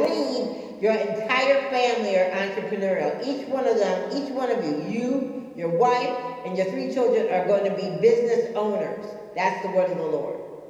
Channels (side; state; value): both; identical; correlation 1.00